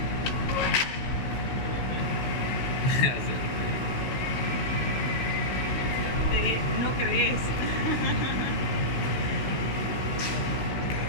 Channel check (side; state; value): right; late; 16 ms